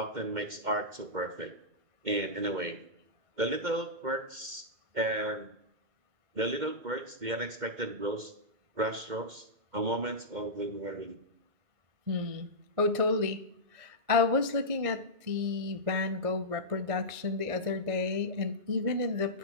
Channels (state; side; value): late; left; 2.1 ms